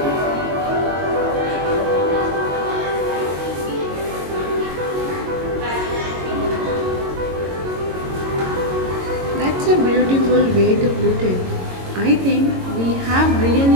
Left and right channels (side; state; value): left; late; 22 ms